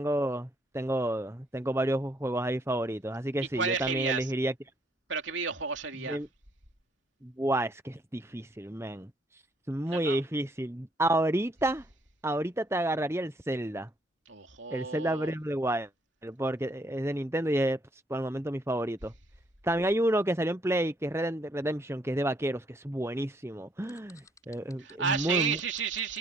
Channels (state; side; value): normal; both; correlation 0.68